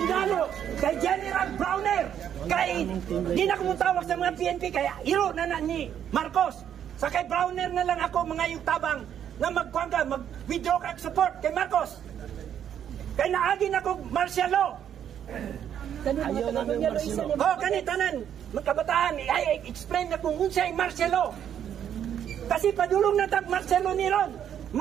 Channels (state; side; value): quieter; left; 9.4 dB